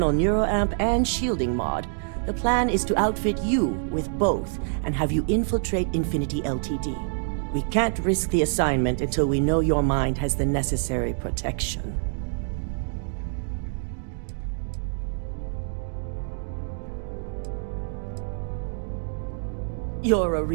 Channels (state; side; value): silent; left; digital silence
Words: neuroamp and shielding mod, the plan is to outfit you with both and have you infiltrate Infinity Ltd. We can't risk the assignment until we know your mind has the necessary protection. You're a